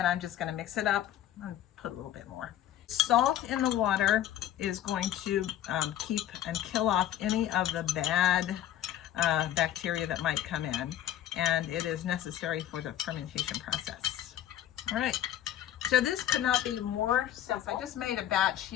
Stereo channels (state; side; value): quieter; right; 11.9 dB